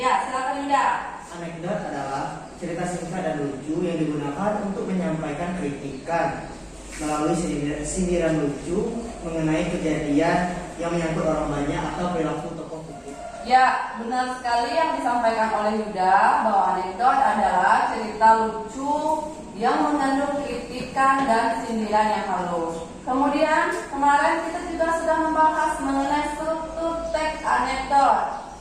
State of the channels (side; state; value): both; identical; correlation 1.00